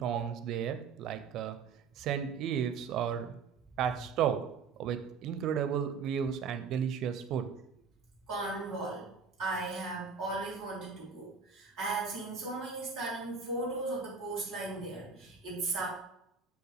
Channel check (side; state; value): left; quieter; 5.7 dB